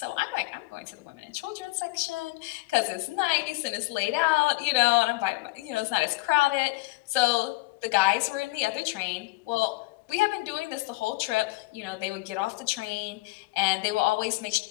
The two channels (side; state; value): right; quieter; 22.2 dB